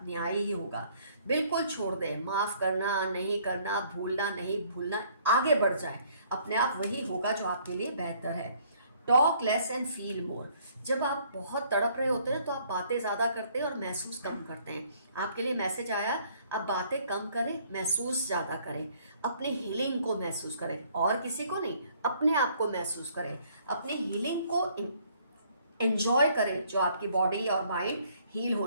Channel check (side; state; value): both; inverted; correlation -0.62